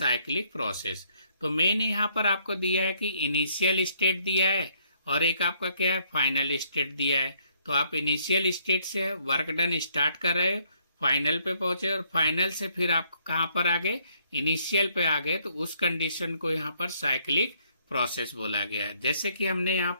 process. तो मेन यहाँ पर आपको दिया है कि इनिशियल स्टेट दिया है और एक आपका क्या है, फाइनल स्टेट दिया है। तो आप इनिशियल स्टेट से वर्क डन स्टार्ट कर रहे हो, फाइनल पे पहुंचे और फाइनल से फिर आप कहाँ पर आ गए, इनिशियल पे आ गए। तो उस कंडीशन को यहाँ पर साइक्लिक प्रोसेस बोला गया है। जैसे कि हमने यहाँ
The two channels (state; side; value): inverted; both; correlation -0.69